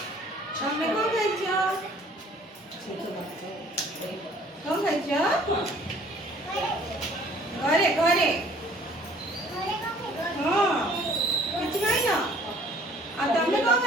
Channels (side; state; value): both; normal; correlation 0.55